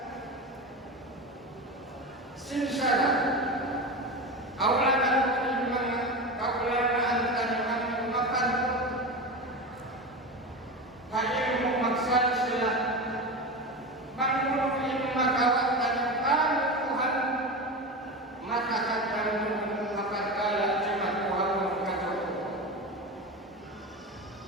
sinsara awlanan mga kaulanaan tayo ang makan hayang mo magsal sila Mangulong ilmu makawat dan Tuhan matakan dan makan kala jimat Tuhan mengkacau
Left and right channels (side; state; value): both; normal; correlation 0.24